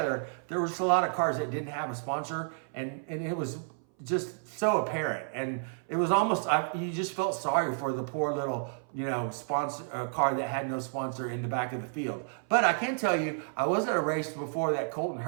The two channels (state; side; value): silent; left; 57 dB below the other